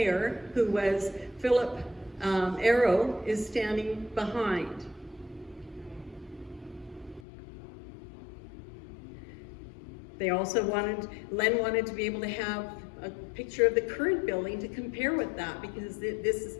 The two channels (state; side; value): drops out; right; at 7.2 s